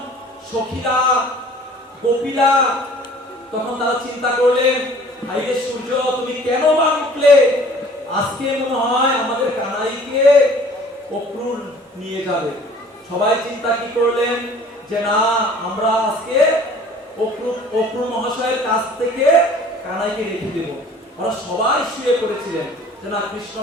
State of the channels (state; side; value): normal; both; correlation 0.51